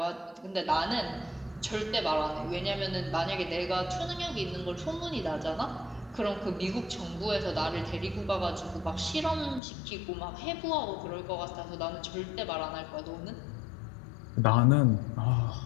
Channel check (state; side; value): drops out; right; at 9.6 s